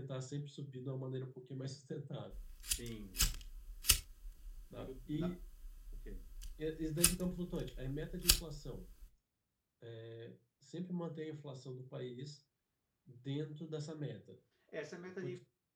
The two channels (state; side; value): identical; both; correlation 1.00